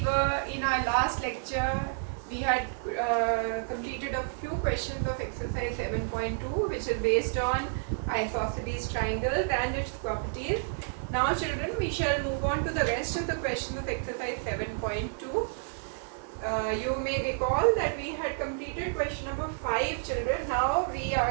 were in our last lecture, we had completed a few questions of exercise 7.2 which is based on isosceles triangles and its properties. Now children, we shall move on to the rest of the questions of exercise 7.2. You may recall that we had completed question number 5 children. Now we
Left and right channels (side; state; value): left; silent; 58 dB below the other